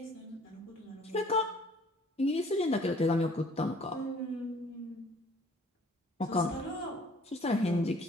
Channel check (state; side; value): normal; both; correlation 0.55